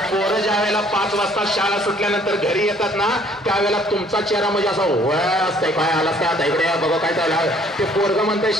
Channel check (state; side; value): normal; both; correlation 0.59